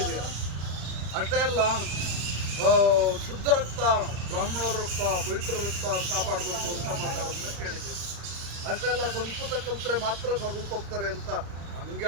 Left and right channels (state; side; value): late; left; 35 ms